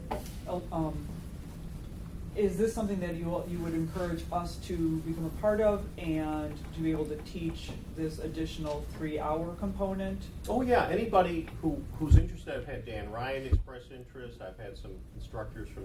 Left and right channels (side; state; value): both; identical; correlation 1.00